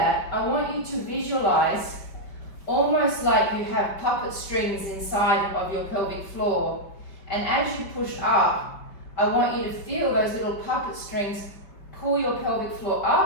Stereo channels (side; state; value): right; late; 5.1 ms